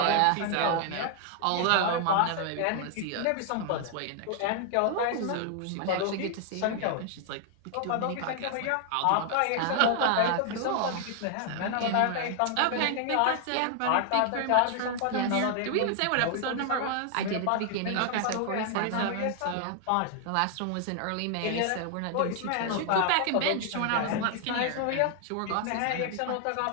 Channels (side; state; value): both; different; correlation 0.00